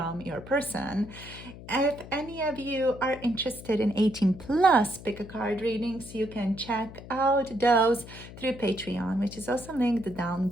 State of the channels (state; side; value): noise; left; hum, 15 dB below the sound